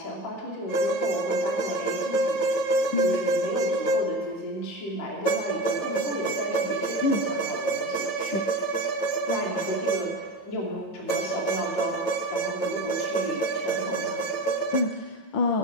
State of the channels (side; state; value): right; late; 9.2 ms